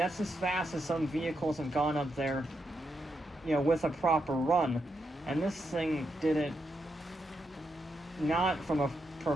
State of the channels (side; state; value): both; normal; correlation 0.83